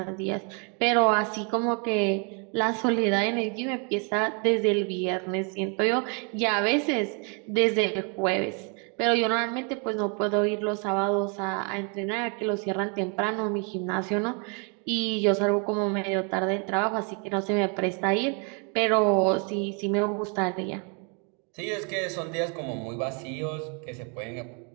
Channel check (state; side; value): quieter; left; 36.7 dB